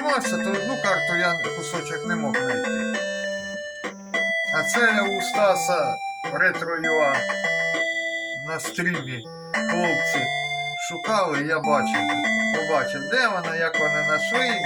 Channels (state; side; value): identical; both; correlation 1.00